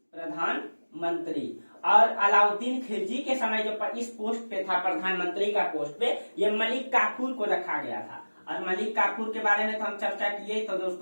प्रधानमंत्री। और अलाउद्दीन खिलजी के समय जो इस पोस्ट पे था, प्रधानमंत्री का पोस्ट पे, ये मलिक काफूर को रखा गया था। और मलिक काफूर के बारे में तो हम चर्चा किए तो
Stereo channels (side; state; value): both; inverted; correlation -1.00